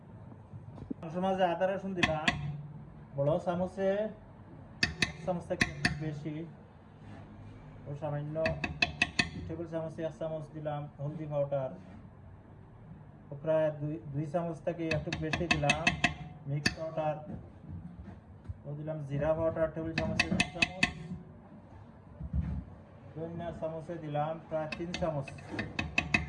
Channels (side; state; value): both; identical; correlation 1.00